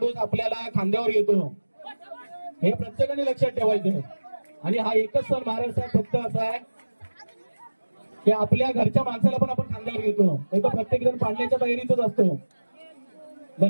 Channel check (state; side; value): inverted; both; correlation -1.00